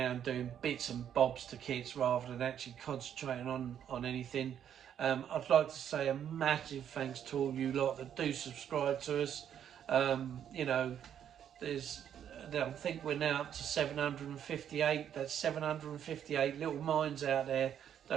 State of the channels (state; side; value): quieter; left; 9.4 dB